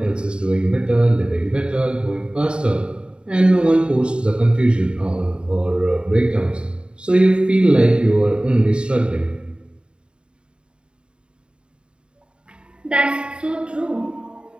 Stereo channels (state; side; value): late; left; 0.052 ms